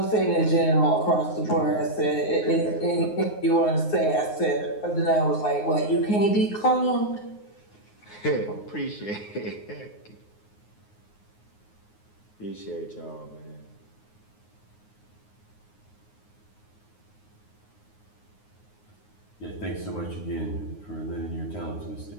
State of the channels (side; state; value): right; late; 9.5 ms